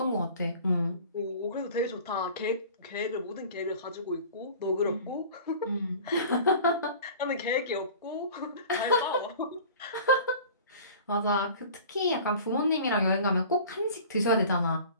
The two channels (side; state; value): both; inverted; correlation -0.42